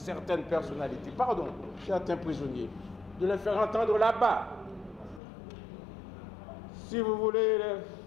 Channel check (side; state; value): right; drops out; at 5.2 s